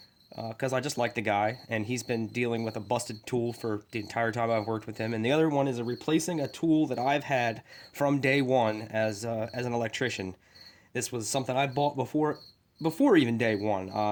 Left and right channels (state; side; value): identical; both; correlation 1.00